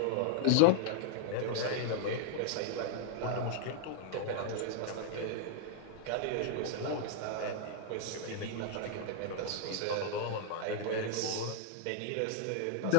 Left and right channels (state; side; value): different; both; correlation 0.00